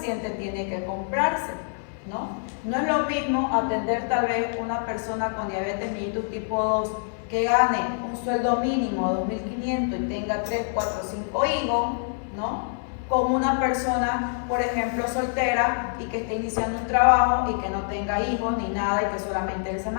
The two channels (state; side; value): silent; right; 61 dB below the other